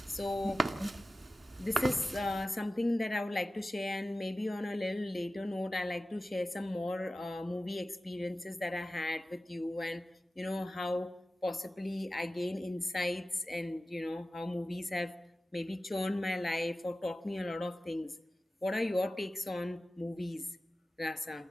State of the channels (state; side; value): normal; both; correlation 0.95